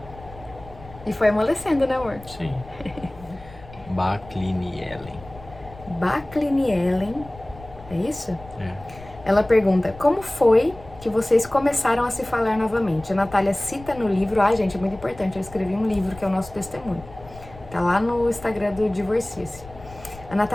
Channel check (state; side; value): noise; left; rumble, 19 dB below the sound